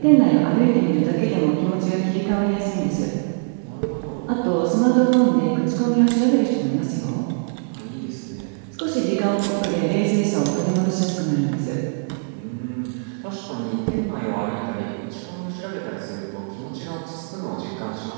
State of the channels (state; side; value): silent; left; digital silence